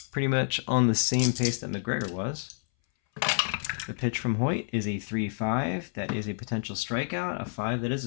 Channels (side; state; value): right; silent; 59 dB below the other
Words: pretty much on the same pace that McGregor was. The pitch from Hoyt is a 3-5. That is a potential strikeout. A 5, that is